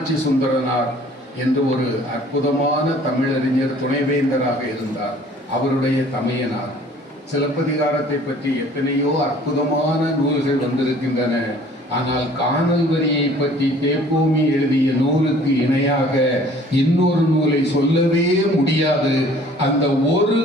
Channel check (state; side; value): normal; both; correlation 0.53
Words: சுந்தரனார் என்று ஒரு அற்புதமான தமிழறிஞர் துணைவேந்தராக இருந்தார். அவருடைய தமையனார். சிலப்பதிகாரத்தை பற்றி எத்தனையோ அற்புதமான நூல்கள் வந்திருக்கின்றன. ஆனால் காணல் வரியை பற்றி தேப்போமி எழுதிய நூலுக்கு இணையாக இன்னொரு நூலை சொல்லவே முடியாது. அந்த ஒரு